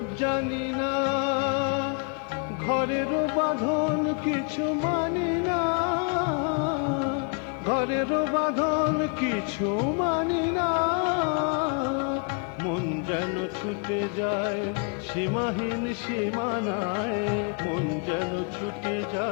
জানি না, ঘরের বাঁধন কিছু মানি না, ঘরের বাঁধন কিছু মানি না। মন যেন ছুটে যায় সীমাহীন সীমানায়, মন যেন ছুটে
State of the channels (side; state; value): right; quieter; 38.6 dB